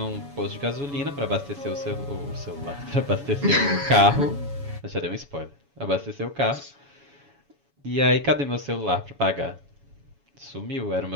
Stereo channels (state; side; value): late; left; 7.1 ms